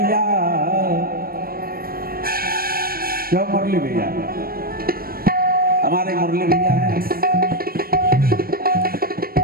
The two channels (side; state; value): left; late; 0.43 ms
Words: क्यों मुरली भैया, हमारे मुरली भैया हैं।